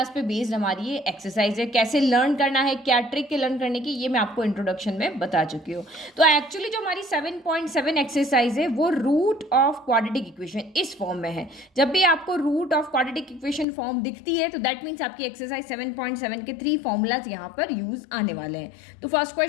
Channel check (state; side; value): drops out; right; at 13.7 s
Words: पे बेस्ड हमारी ये एक्सरसाइज है। कैसे लर्न करना है, क्या ट्रिक है लर्न करने की, ये मैं आपको इंट्रोडक्शन में बता चुकी हूँ। तो एक्चुअली जो हमारी 7.7 एक्सरसाइज है वो रूट ऑफ क्वाड्रेटिक इक्वेशन इस फॉर्म में है। जब भी आपको root of quadratic equation form दिखती है तो दैट मीन्स आपकी एक्सरसाइज 7.7 के 3 फॉर्मूलाज यहाँ पर यूज आने वाले हैं। तो फर्स्ट